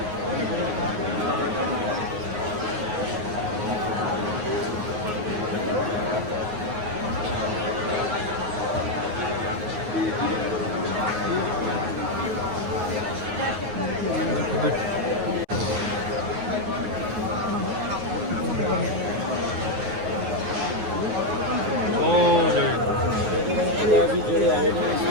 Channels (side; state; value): left; late; 9.5 ms